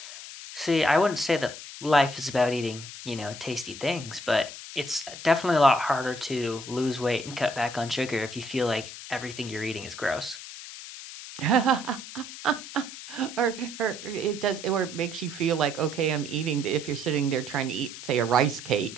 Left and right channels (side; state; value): left; noise; hiss, 12 dB below the sound